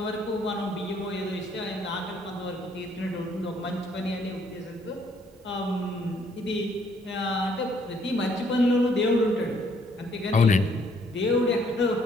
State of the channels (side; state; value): both; normal; correlation 0.66